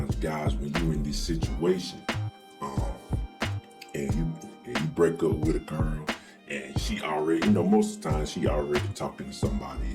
guys, when you're in this situation, and you break up with a girl, and she already, most of the time she already talking to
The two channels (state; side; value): identical; both; correlation 1.00